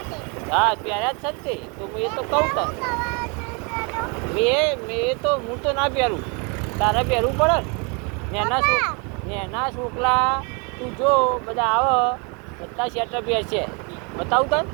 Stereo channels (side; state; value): left; quieter; 32.7 dB